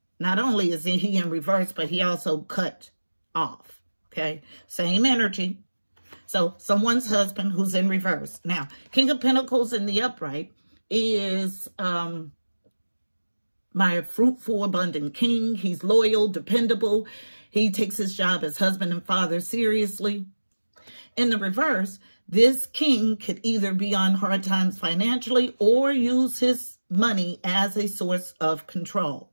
Not only is he in reverse, but he also cut off, okay? Same energy. So someone's husband who's in reverse. Now, King of Pentacles in the upright is my fruitful, abundant king. He's loyal, dependable. He takes his job as husband and father seriously. In the reverse, this king could either be on hard times financially or use his money as a source of control,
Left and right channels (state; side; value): inverted; both; correlation -1.00